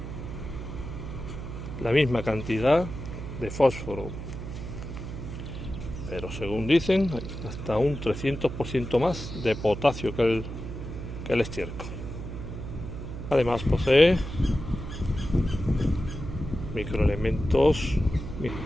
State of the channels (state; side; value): noise; right; hum, 8 dB below the sound